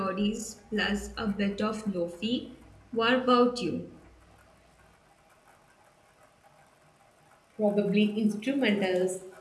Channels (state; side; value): identical; both; correlation 1.00